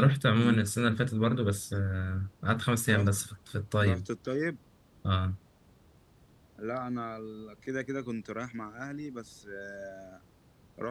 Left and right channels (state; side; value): identical; both; correlation 1.00